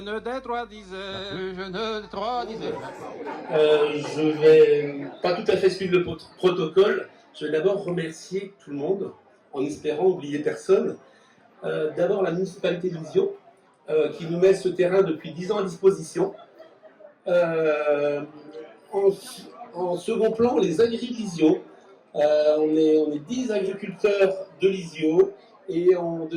des trois disait, la plus jeune des trois disait. Je vais pas tout à fait suivre le protocole. Je vais d'abord remercier tout le monde, en espérant oublier personne. D'abord la municipalité de Lisieux, qui nous met ce terrain depuis 10 ans à disposition. En second plan, les agriculteurs Lisieux. On est 10 agriculteurs de Lisieux et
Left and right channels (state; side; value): identical; both; correlation 1.00